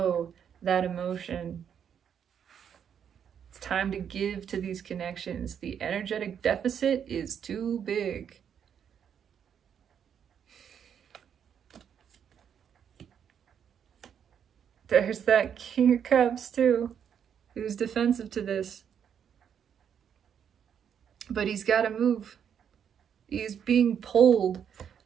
that emotion. It's time to give to these connections. The energetic deficit is too big. There's that King of Cups too, who's defensive to this. But he's got to move. He's being pulled,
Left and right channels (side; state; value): left; quieter; 8.2 dB